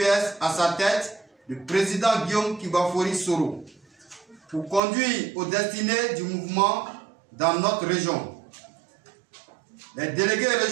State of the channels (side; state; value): left; drops out; at 4.8 s